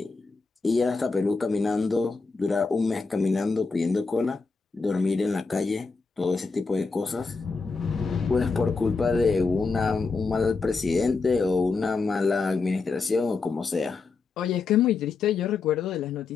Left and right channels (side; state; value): right; quieter; 4.3 dB